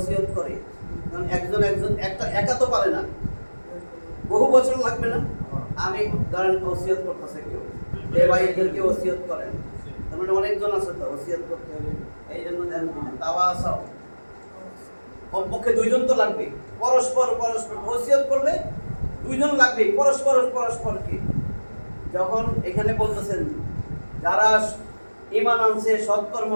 করে তখন একজন একটা একা তো পারে না বহু বছর লাগবে না আমি ধরেন ওসিয়ত করতেছে কেউ এই ভাই এদেরকে ওসিয়ত করেন তার মানে অনেকজন আছে তো ওসিয়ত করতে হবে এই জন্য ধ্যান দিন তাওয়াসাউ কমপক্ষে দুইজন তো লাগবে পরস্পর ওসিয়ত করলে দুইজন লাগবে পরস্পরকে যখন এখানে বলতেছেন যারা ঈমান আনছে সৎকর্ম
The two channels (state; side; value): inverted; both; correlation -1.00